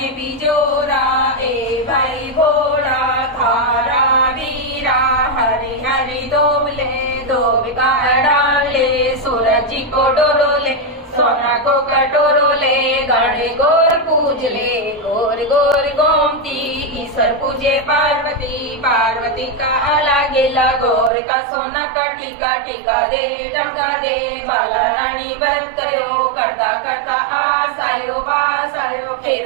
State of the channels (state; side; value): drops out; left; at 21.1 s